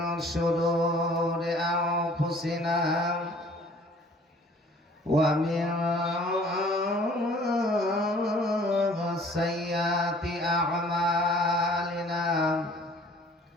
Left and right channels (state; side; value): normal; both; correlation 0.53